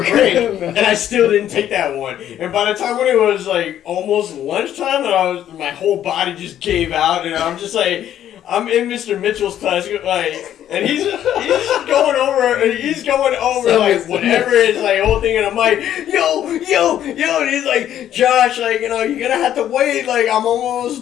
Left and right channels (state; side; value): quieter; right; 11.0 dB